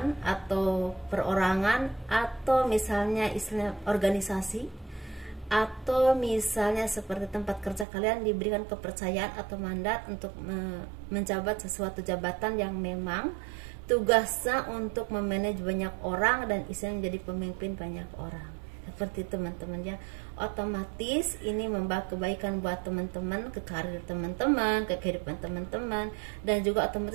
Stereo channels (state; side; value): drops out; left; at 7.9 s